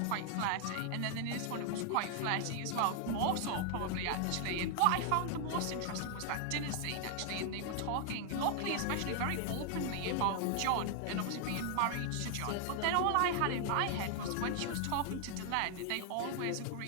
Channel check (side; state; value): both; different; correlation 0.00